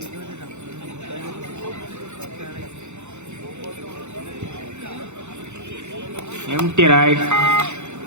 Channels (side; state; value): left; late; 0.83 ms